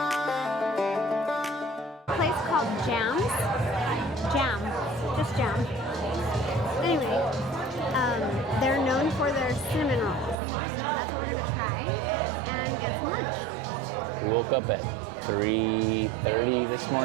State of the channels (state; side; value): drops out; left; at 10.4 s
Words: A place called Jam. Just Jam. Anyway, they're known for their cinnamon rolls. So that's what we're gonna try and get some lunch. We woke up at 3:30 this